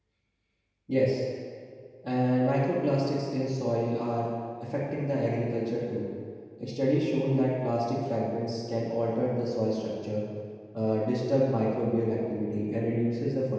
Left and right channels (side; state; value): both; identical; correlation 1.00